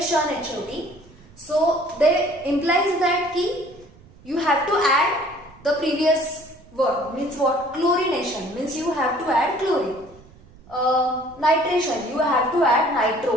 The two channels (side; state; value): right; noise; rumble, 25 dB below the sound